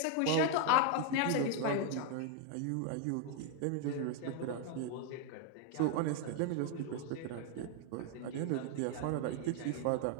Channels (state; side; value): different; both; correlation 0.00